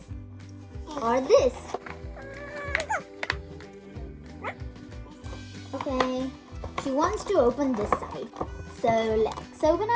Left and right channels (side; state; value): both; identical; correlation 1.00